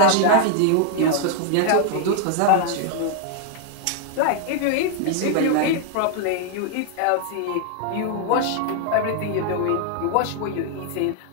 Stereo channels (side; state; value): both; different; correlation 0.00